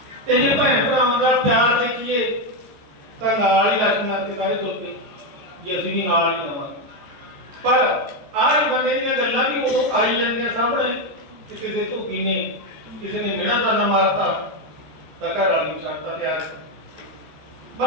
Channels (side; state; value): left; late; 14 ms